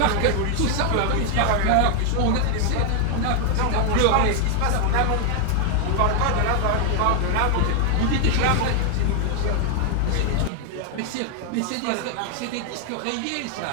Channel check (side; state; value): both; different; correlation 0.00